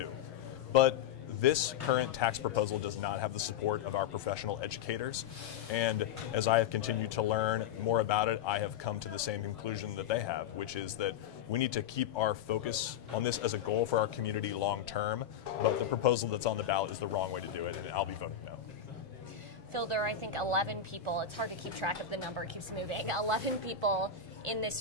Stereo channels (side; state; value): right; quieter; 8.3 dB